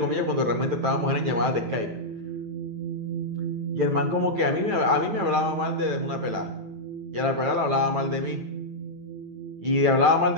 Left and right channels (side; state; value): left; late; 9.0 ms